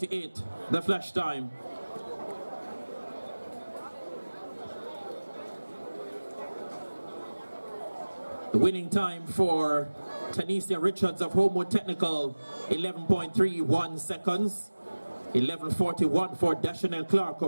the flash time. The winning time for Tanisha Richards of Homewood Technical, 11.31 seconds. 11:41 for Dashanelle Clark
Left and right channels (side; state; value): both; inverted; correlation -1.00